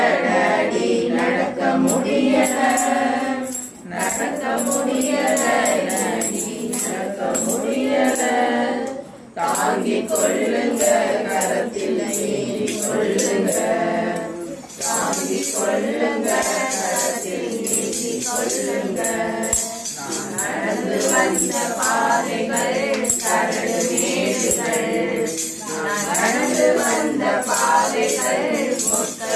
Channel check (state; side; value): identical; both; correlation 1.00